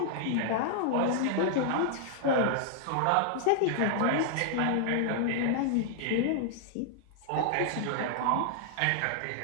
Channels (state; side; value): different; both; correlation -0.01